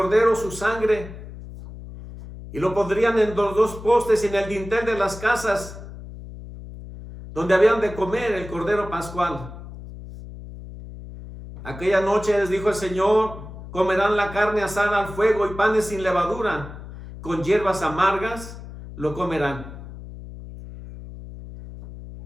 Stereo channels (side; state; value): left; noise; hum, 13 dB below the sound